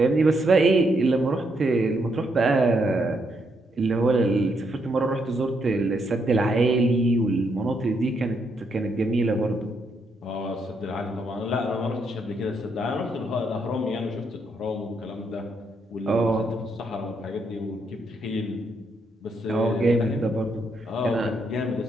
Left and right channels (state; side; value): normal; both; correlation 0.77